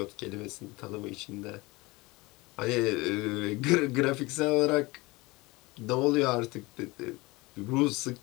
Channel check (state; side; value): quieter; right; 22.9 dB